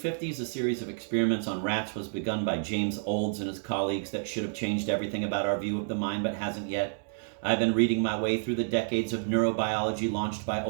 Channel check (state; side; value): silent; left; digital silence